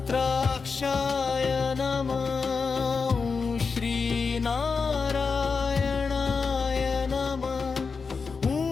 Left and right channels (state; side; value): quieter; right; 5.0 dB